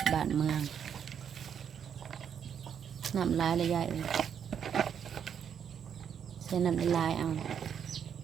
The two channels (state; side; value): quieter; left; 8.0 dB